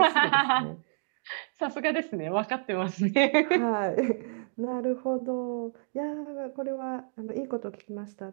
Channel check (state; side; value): silent; left; 59 dB below the other